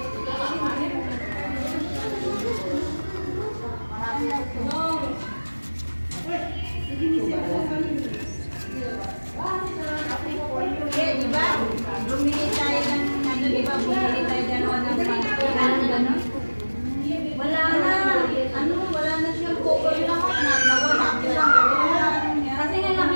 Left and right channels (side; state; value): both; inverted; correlation -1.00